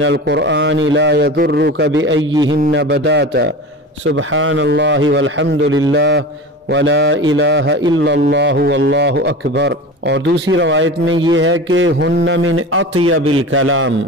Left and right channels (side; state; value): both; normal; correlation 0.32